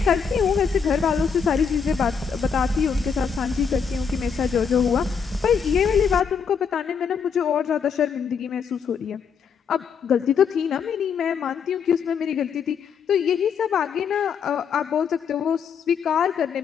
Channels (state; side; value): quieter; right; 6.5 dB